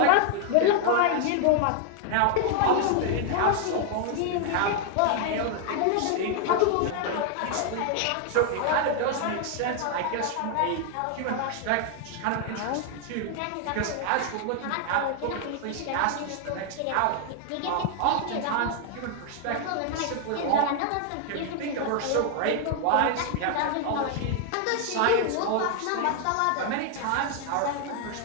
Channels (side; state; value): both; different; correlation 0.00